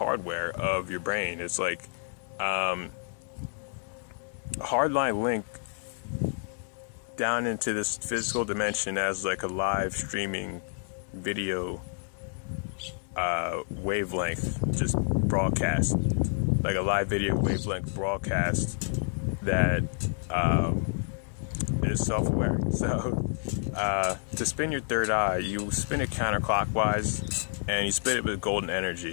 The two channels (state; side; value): silent; right; 58 dB below the other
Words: of your brain. It's like a hardline link down into this physical dimension as a live streaming video wavelength, just broadcast, like a live video wavelength broadcast that is self-aware. So to spin your third eye, you spin it counterclockwise and you spin it with golden